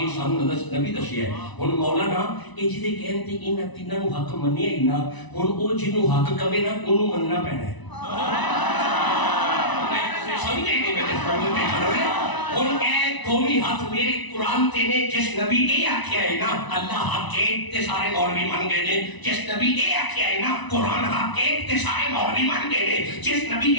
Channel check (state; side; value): late; right; 1.0 ms